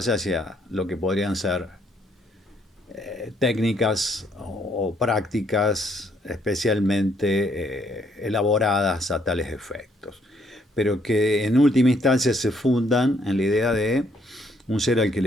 hacia lo que podrían ser técnicas o prácticas especialmente elaboradas a tales efectos, pero que en última instancia se fundan en la idea de un ser al que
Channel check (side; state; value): both; normal; correlation 0.69